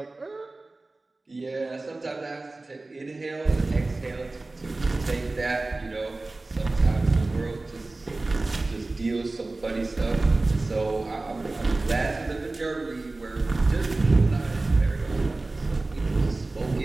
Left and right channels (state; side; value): quieter; left; 3.1 dB